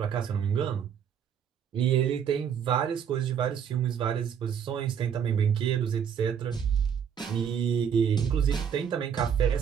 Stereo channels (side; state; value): left; quieter; 8.0 dB